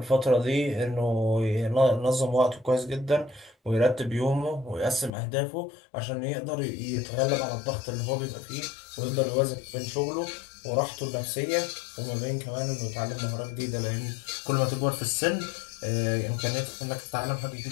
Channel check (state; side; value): drops out; right; at 5.1 s